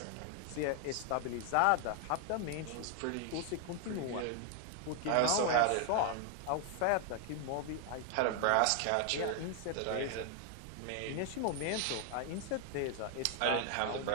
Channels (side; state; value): both; different; correlation 0.00